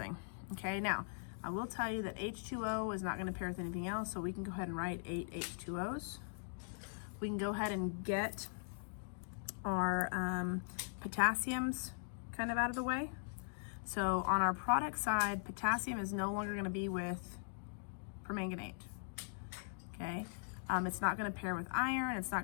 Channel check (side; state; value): right; silent; digital silence